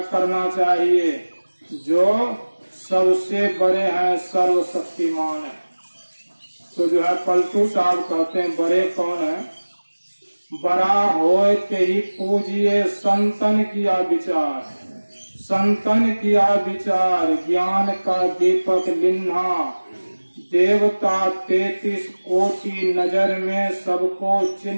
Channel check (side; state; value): both; inverted; correlation -1.00